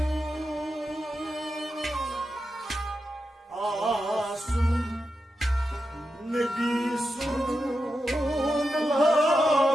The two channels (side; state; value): both; normal; correlation 0.88